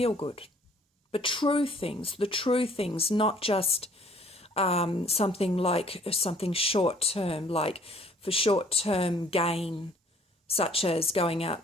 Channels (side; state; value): both; normal; correlation 0.58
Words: good. But the true things, not just something short term, like for short term gain, such as going out